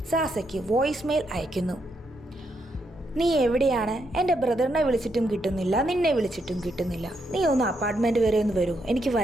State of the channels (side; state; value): both; normal; correlation 0.79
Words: സാസയ്ക്ക് വോയിസ് മെയിൽ അയക്കുന്നു. നീ എവിടെയാണ്? എൻ്റെ ബ്രദറിനെ വിളിച്ചിട്ടും കിട്ടുന്നില്ല, നിന്നെ വിളിച്ചിട്ടും കിട്ടുന്നില്ല. നീ ഒന്ന് അപ്പാർട്ട്മെൻറ്റ് വരെ ഒന്ന് വരൂ, എനിക്ക്